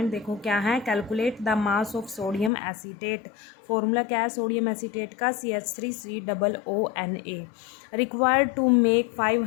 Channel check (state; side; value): drops out; right; at 2.5 s